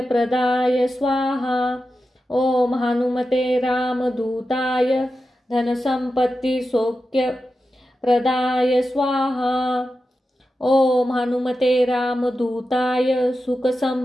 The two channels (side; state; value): both; normal; correlation 0.91